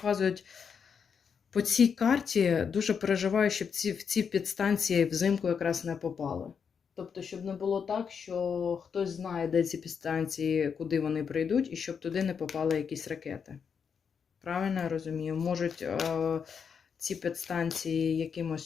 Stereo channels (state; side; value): quieter; right; 6.6 dB